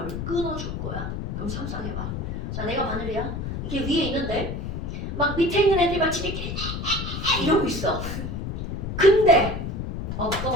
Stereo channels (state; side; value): noise; left; rumble, 4 dB below the sound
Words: 끊어줄 거야. 그럼 상상해봐. 자 내가 바늘이야. 이게 위에 있는데 막 밑에 있는 애들이 막 지들끼리 이러고 있어. 근데